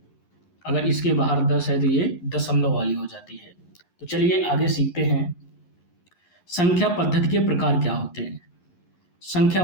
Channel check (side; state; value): right; late; 11 ms